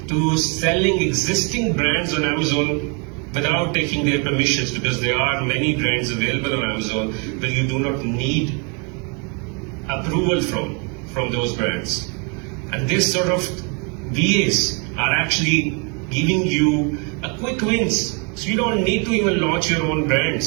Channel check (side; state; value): left; quieter; 34.7 dB